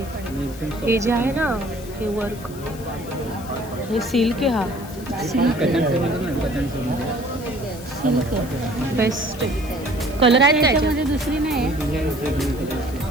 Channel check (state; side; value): noise; left; hiss, 18 dB below the sound